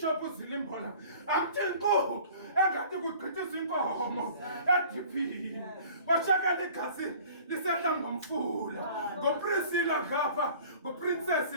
uZilimbola athi nko engathi kugqithiswa inkomo ediphini bashakela igazi lisehla ngomfula ngoPriscilla ngapha ngoPrincess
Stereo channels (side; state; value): both; inverted; correlation -0.47